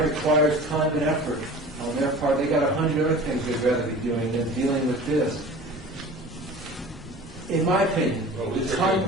requires time and effort on their part. They got 100 other things they'd rather be doing than dealing with this. In my opinion, Well, the these are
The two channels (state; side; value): normal; both; correlation 0.40